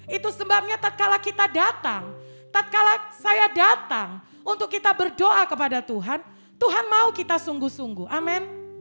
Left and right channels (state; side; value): inverted; both; correlation -1.00